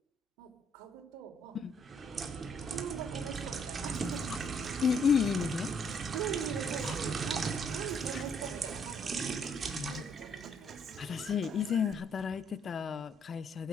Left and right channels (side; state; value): both; normal; correlation 0.69